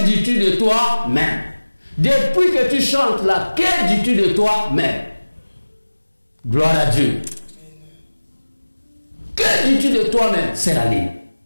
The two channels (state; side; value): inverted; both; correlation -1.00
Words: dis-tu de toi-même? Depuis que tu chantes là, que dis-tu de toi-même? Gloire à Dieu. Que dis-tu de toi-même? C'est la ligne.